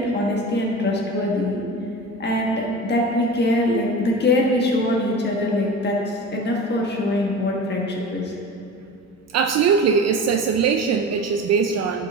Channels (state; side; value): normal; both; correlation 0.32